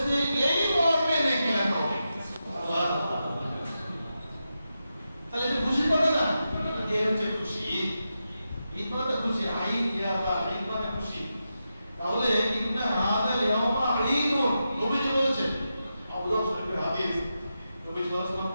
নেকি লেখা হবে। তাহলে এটা খুশি পাবে না? এ হচ্ছে খুশি। ঈদ মানে খুশি, ঈদ ইয়াবা, ঈদ মানে খুশি। তাহলে ইন্না হাদা ইয়াওমা ঈদুন, নবীজি বলেছেন, আবু দাউদ শরীফের হাদিস, নবী সাল্লাল্লাহু আলাইহি ওয়াসাল্লাম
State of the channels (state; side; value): inverted; both; correlation -0.89